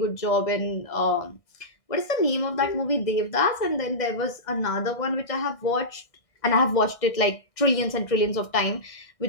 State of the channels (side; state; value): right; late; 1.6 ms